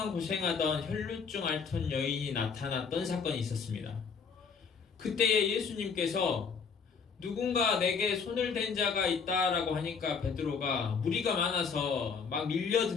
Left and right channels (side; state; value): right; quieter; 5.8 dB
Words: 고생하던 혈루증 앓던 여인이 나타났던 사건이 있었습니다. 그때에 예수님께서 누군가 내게 손을 댄 자가 있다라고 하니까 베드로가 무리가 많아서 막